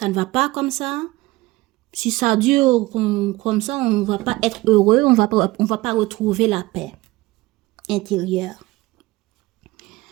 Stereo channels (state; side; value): quieter; left; 19.9 dB